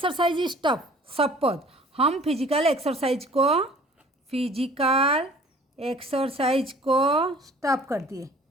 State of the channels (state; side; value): normal; both; correlation 0.51